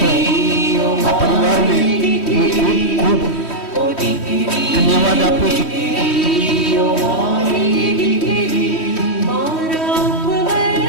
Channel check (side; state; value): right; late; 3.1 ms